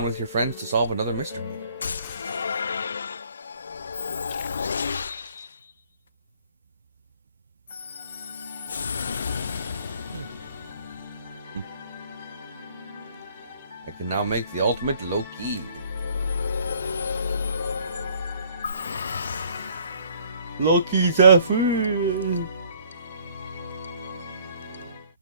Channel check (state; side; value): inverted; both; correlation -0.59